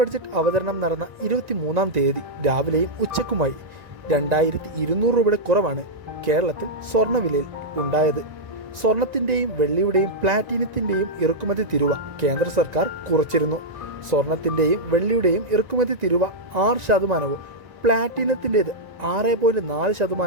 അവതരണം നടന്ന 23-ാം തീയതി രാവിലെയും ഉച്ചക്കുമായി 2200 രൂപയുടെ കുറവാണ് കേരളത്തിൽ സ്വർണ്ണവിലയിൽ ഉണ്ടായത്. സ്വർണത്തിൻ്റെയും വെള്ളിയുടെയും പ്ലാറ്റിനത്തിൻ്റെയും ഇറക്കുമതി തീരുവ കേന്ദ്ര സർക്കാർ കുറച്ചിരുന്നു. സ്വർണത്തിൻ്റെയും വെള്ളിയുടെയും ഇറക്കുമതി തീരുവ 6%, പ്ലാറ്റിനത്തിൻ്റേത്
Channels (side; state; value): left; late; 1.9 ms